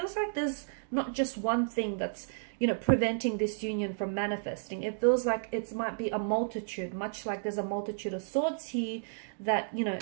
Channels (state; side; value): silent; left; digital silence